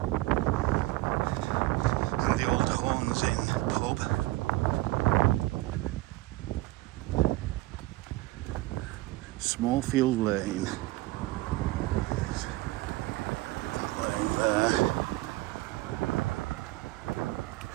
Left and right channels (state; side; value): quieter; left; 19.3 dB